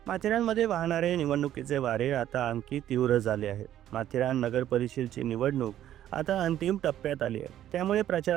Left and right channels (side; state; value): left; quieter; 11.9 dB